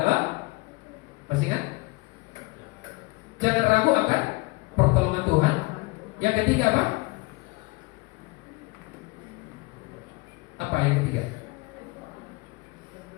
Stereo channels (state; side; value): quieter; right; 25.7 dB